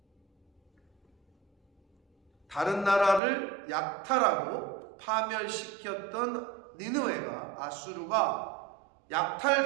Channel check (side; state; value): left; drops out; at 3.2 s